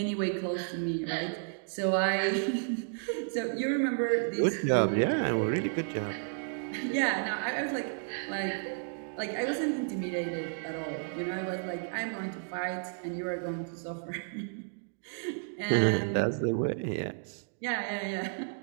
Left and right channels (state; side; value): silent; left; digital silence